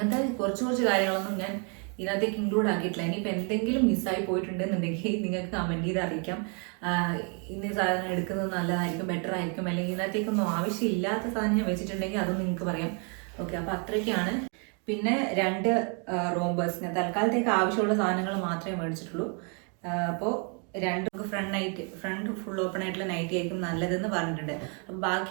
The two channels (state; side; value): quieter; left; 37.6 dB